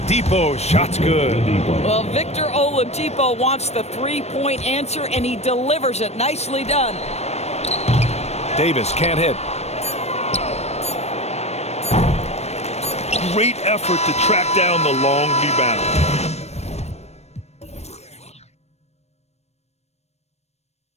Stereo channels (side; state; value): right; late; 0.31 ms